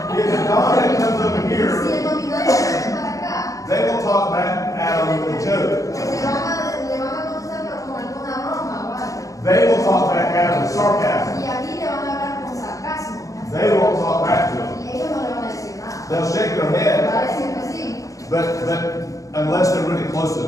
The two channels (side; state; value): right; late; 0.16 ms